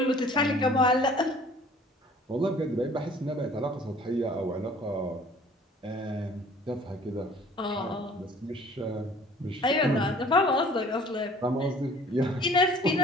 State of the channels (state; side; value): normal; both; correlation 0.52